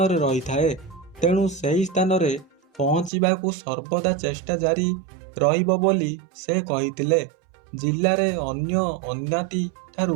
ରହିଥାଏ। ତେଣୁ ସେହି ସ୍ଥାନରେ ପହଞ୍ଚିବାକୁ ସର୍ବଦା ଚେଷ୍ଟା ଜାରି ରହିବ ବୋଲି ସେ କହିଥିଲେ। ଜିଲ୍ଲାରେ ଅନ୍ୟ ଅନ୍ୟାତି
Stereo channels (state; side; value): drops out; left; at 3.1 s